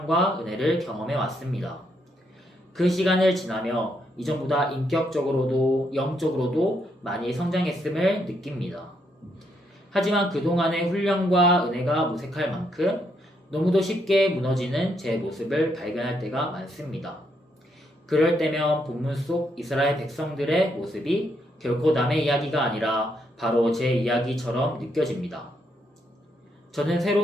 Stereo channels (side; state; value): both; normal; correlation 0.76